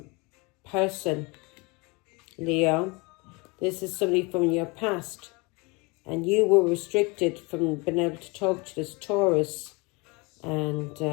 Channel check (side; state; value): right; quieter; 27.7 dB